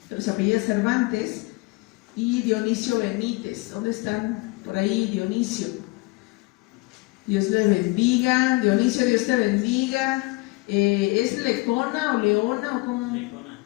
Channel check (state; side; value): quieter; right; 24.3 dB